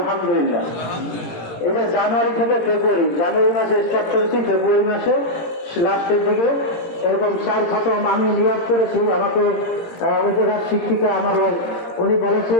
এটা জানুয়ারি থেকে ফেব্রুয়ারি, জানুয়ারি মাসে স্টার্ট করেছি, ফেব্রুয়ারি মাসে লাস্টের দিকে এরকম 4 খতম আমি নিয়োগ করেছি। আমাকে ওই জায়গার শিক্ষিকা আমার উনি বলেছে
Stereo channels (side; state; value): right; late; 18 ms